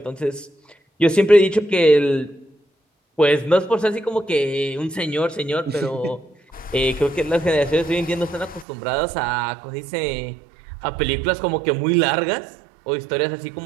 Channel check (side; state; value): left; drops out; at 8.7 s